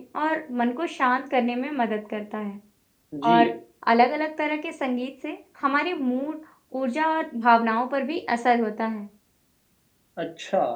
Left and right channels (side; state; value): both; identical; correlation 1.00